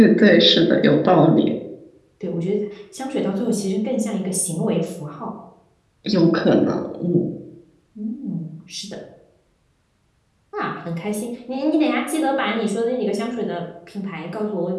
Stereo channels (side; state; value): both; identical; correlation 1.00